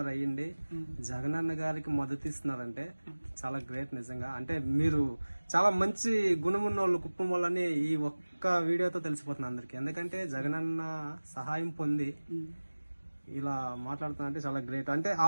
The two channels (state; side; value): inverted; both; correlation -1.00